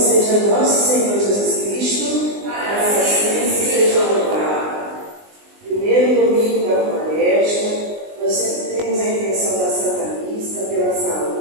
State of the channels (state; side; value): late; left; 20 ms